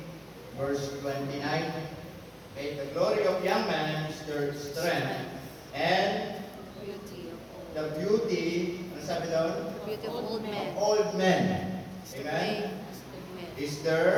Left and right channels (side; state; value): both; identical; correlation 1.00